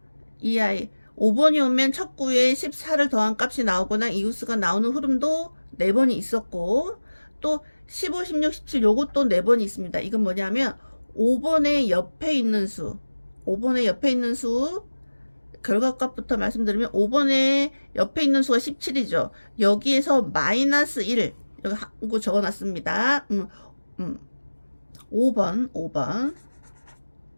이 아이 5번이 오면 첫 구에 14를 더한 값이 나오거나 이웃수가 나오는 흐름도 4번이 있었고, 또 15, 16, 17 요것도 4번이 있습니다. 이건 뭐냐면 5번의 옆에 있는 수, 5번의 옆에 있는 수 결과값부터 말씀드리면 5번의 옆에 있는 수가 17이죠. 여기에서 마이너스 1 여기 한거 적어놨습니다. 5번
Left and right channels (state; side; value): inverted; both; correlation -1.00